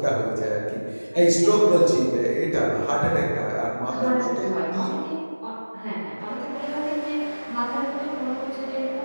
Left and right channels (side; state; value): both; inverted; correlation -1.00